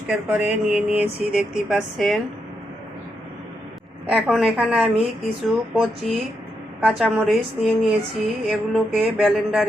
করে নিয়ে নিয়েছি, দেখতেই পাচ্ছেন। এখন এখানে আমি কিছু কচি কাঁচামরিচ নিয়ে নিয়েছি, এগুলোকে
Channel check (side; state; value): both; normal; correlation 0.82